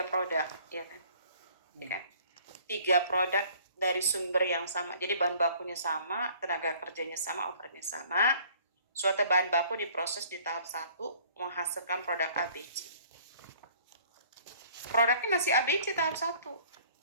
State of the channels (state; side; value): inverted; both; correlation -0.55